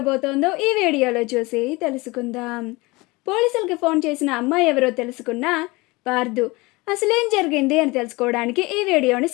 ఈ వీడియోలో చూసి తెలుసుకుందాం. పోలీసులకి ఫోన్ చేసిన అమ్మాయి ఎవరో తెలుసుకున్న పార్దు అసలేం జరిగింది అని తెలుసుకోవడానికి ఈ వీడియోని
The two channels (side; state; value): right; quieter; 23.5 dB